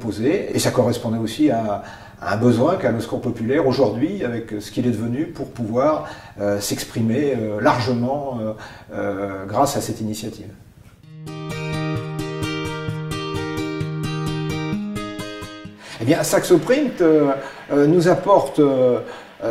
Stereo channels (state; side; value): identical; both; correlation 1.00